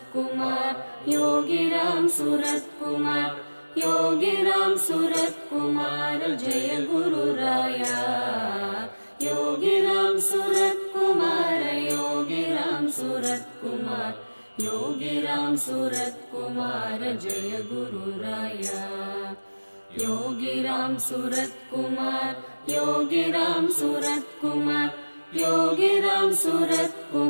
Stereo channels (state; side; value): inverted; both; correlation -1.00